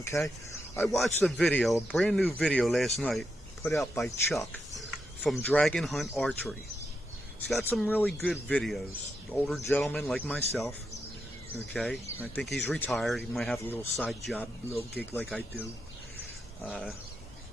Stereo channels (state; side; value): normal; both; correlation 0.84